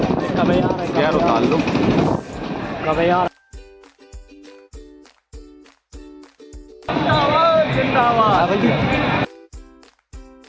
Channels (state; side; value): identical; both; correlation 1.00